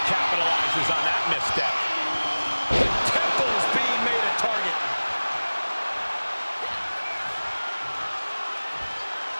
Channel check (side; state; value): both; inverted; correlation -1.00